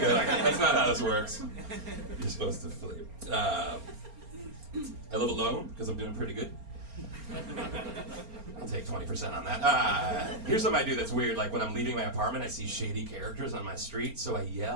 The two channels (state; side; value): late; left; 4.3 ms